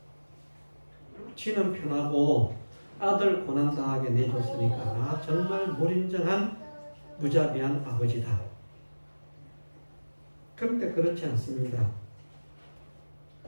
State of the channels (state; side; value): inverted; both; correlation -1.00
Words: 지는 편하고 아들 고난 당하게 내줬으니까 나 정말 무인정한 무자비한 아버지다. 그런데 그렇지 않습니다.